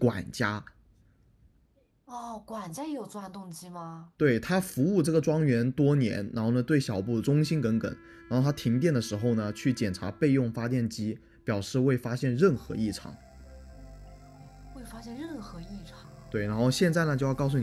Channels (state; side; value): identical; both; correlation 1.00